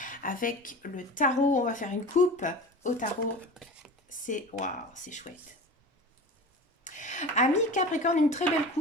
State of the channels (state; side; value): normal; both; correlation 0.34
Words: avec le tarot. On va faire une coupe au tarot. C'est waouh, c'est chouette. Amis Capricorne, une très belle